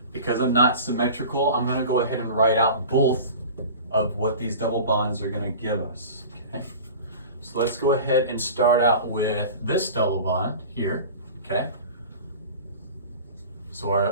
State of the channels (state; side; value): inverted; both; correlation -0.37